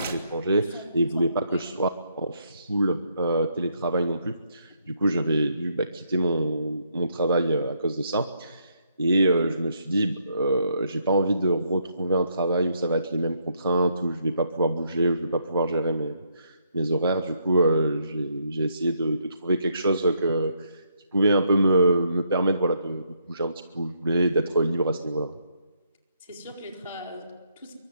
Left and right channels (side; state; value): both; inverted; correlation -0.74